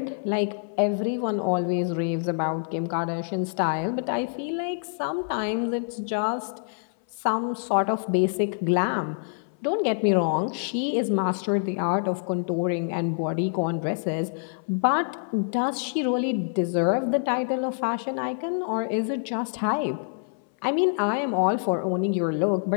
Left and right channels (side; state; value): right; silent; 59 dB below the other